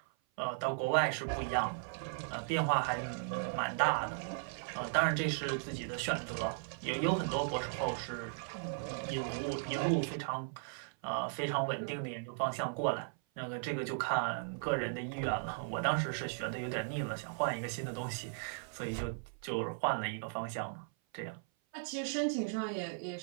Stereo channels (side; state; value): left; silent; 53 dB below the other